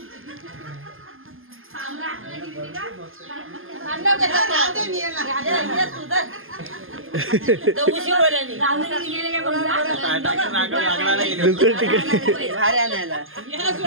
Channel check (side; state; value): left; late; 0.59 ms